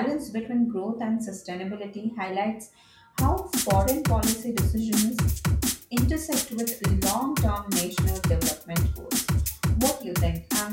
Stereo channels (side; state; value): both; identical; correlation 1.00